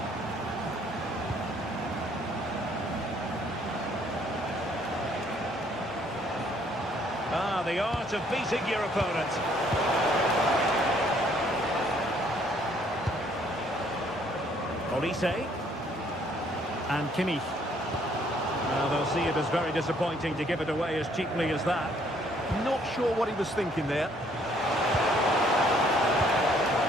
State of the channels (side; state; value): both; normal; correlation 0.64